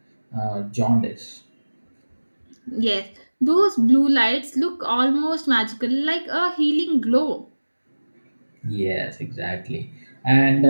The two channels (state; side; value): inverted; both; correlation -1.00